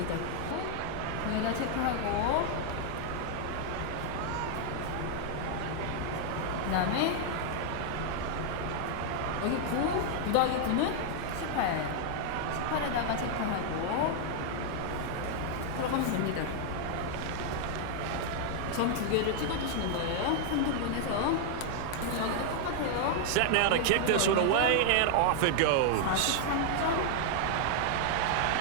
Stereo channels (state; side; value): different; both; correlation 0.00